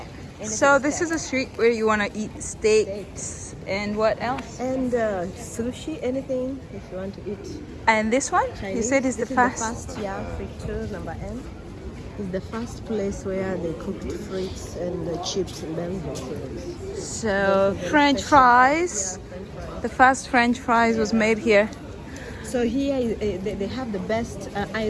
So this is a street where you want to eat steaks and what else? And sushi, anything if you want to eat. And this one? Chinese. You said is the This fast. is the first, yeah, friture number N. Is the first place where they cooked frites and chips in Belgium. So very French special. fries. Yeah, French fries. The first French fries was made here. So here they have the best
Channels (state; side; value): identical; both; correlation 1.00